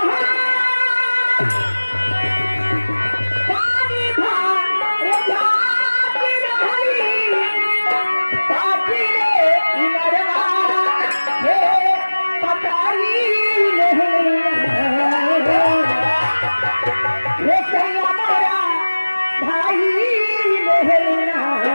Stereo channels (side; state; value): both; inverted; correlation -1.00